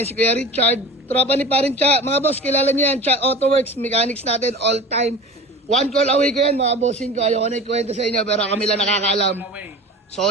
si Kuya Richard. Tropa ni Parin Cha. Mga boss, kilala niyo yan. Cha Auto Works, mechanics natin all time. One call away ko yan, mga bossing ko. Ayaw ko na ikwento sa inyo, pero kami lang nakakaalam.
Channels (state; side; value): normal; both; correlation 0.36